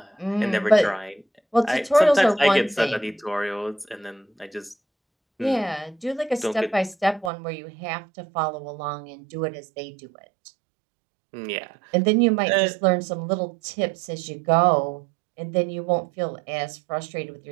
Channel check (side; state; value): left; drops out; at 7.3 s